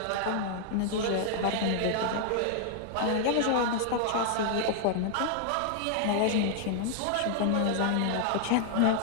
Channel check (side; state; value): both; different; correlation 0.00